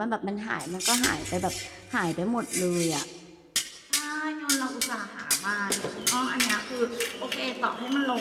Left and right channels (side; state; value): both; identical; correlation 1.00